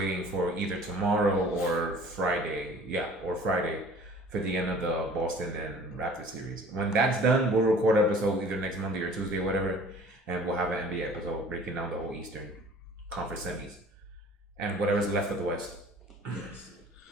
for either tomorrow or Friday. Yeah, or Friday for the end of the Boston and Raptors series. When that's done, we'll record an episode either next Monday or Tuesday or whatever, and we'll have an NBA episode breaking down the whole Eastern Conference semis and whatever's left of the West. Yes.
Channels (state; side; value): normal; both; correlation 0.49